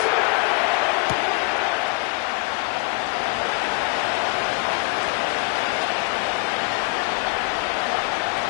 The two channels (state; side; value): quieter; right; 32.3 dB